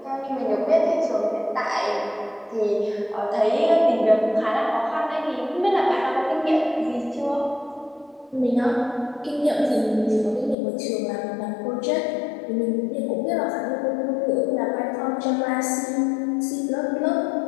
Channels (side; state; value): right; drops out; at 10.6 s